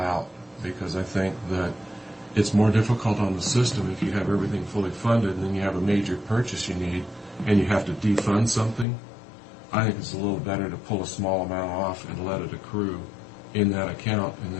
because I think that it's more difficult on the system if you have everything fully funded and then you have a major purchase you need and you have to defund something. I think it's a little better to pull a small amount off and let it accrue in that account and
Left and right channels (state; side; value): drops out; right; at 8.8 s